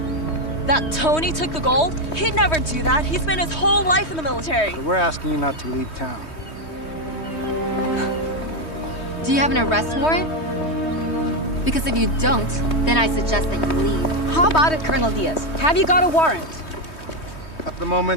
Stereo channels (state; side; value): late; right; 3.2 ms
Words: That Tony took the gold? He'd never do that. He spent his whole life in the military. So we're asking you not to leave town. Do you have an arrest warrant? Because if you don't, then I suggest that you leave. How about it, Colonel Diaz? Have you got a warrant? At the